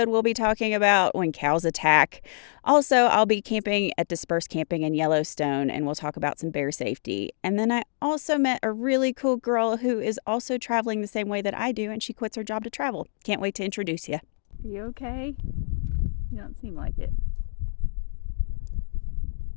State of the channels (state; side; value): silent; right; digital silence